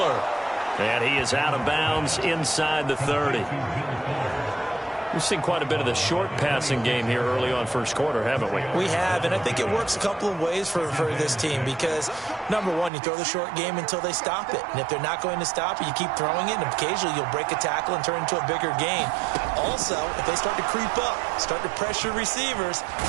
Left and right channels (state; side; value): drops out; left; at 12.9 s